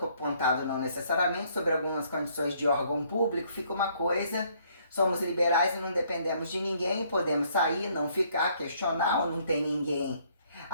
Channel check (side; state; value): both; inverted; correlation -0.65